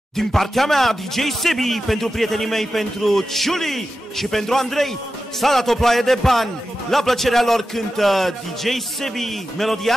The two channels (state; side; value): normal; both; correlation 0.92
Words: Din partea mea, DJ Sebi, pentru prietenii mei, pentru Ciuli și pentru Andrei, s-a dat o ploaie de bani. La plăcerea lor cântă DJ Sebi melodia